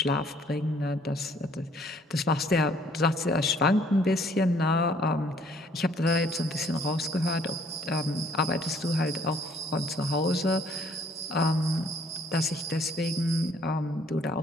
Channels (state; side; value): normal; both; correlation 0.61